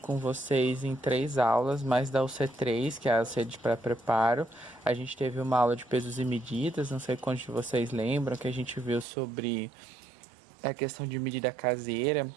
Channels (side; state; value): left; drops out; at 9.1 s